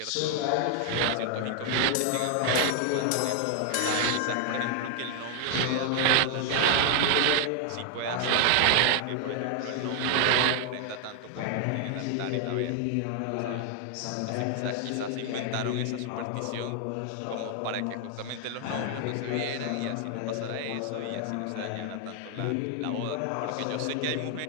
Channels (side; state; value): both; different; correlation 0.00